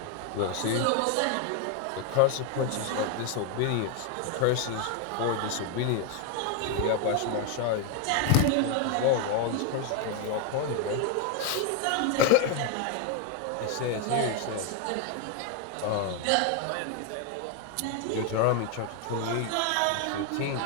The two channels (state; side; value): different; both; correlation 0.01